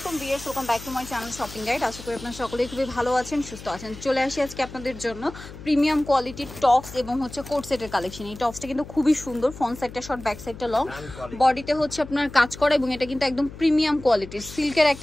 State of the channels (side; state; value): left; noise; hum, 14 dB below the sound